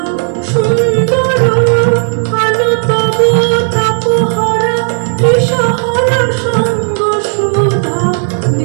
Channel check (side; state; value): left; silent; 57 dB below the other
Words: সুন্দর, আলো তব তাপহারা দিশাহারা সঙ্গ সুধা